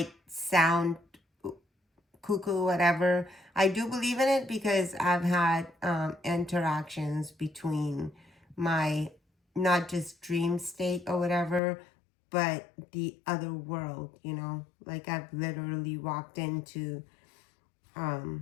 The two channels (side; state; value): right; drops out; at 11.6 s